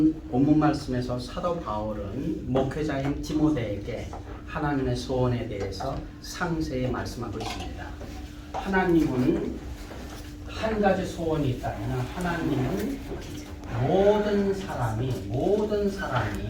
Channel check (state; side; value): identical; both; correlation 1.00